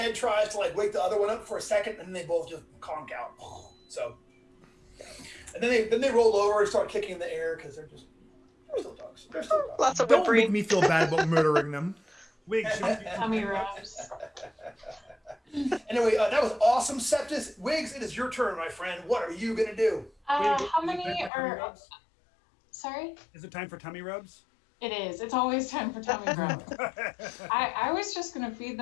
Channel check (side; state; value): right; drops out; at 21.3 s